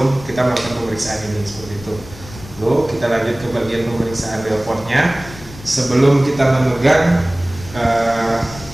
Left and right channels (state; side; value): noise; left; rumble, 17 dB below the sound